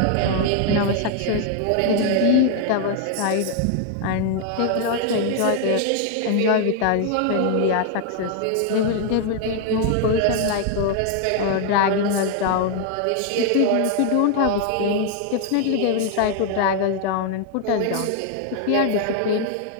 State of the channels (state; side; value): different; both; correlation 0.00